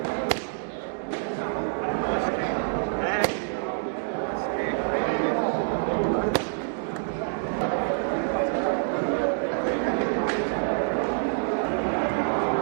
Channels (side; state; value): left; silent; digital silence